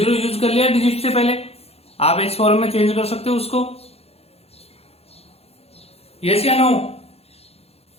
यूज कर लिया डिजिट से पहले, आप इस फॉर्म में चेंज कर सकते हो उसको। यस या नो,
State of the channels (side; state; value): right; late; 0.29 ms